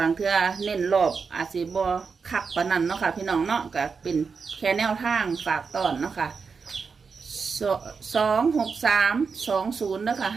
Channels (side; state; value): left; quieter; 5.3 dB